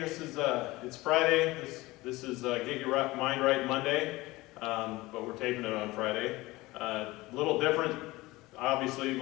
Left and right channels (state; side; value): quieter; right; 20.2 dB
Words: it's Friday. This is Get Your Mind Right Monday, but we're taping it on Friday. A little different. Obviously,